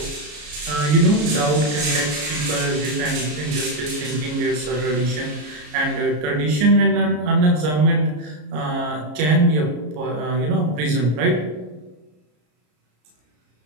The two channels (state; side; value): late; left; 33 ms